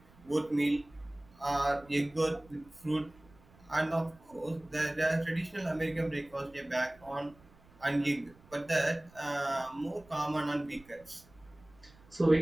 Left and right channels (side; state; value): right; noise; rumble, 26 dB below the sound